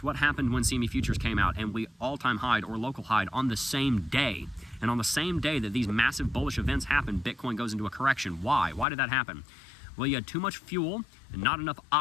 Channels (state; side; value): drops out; right; at 8.8 s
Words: What happened when CME Futures came out and we all-time high or local high on the same day? And on the same day that these massive bullish events happen, Bitcoin goes into a correction. Why? Why did that happen? Well, you had too much fuel and not enough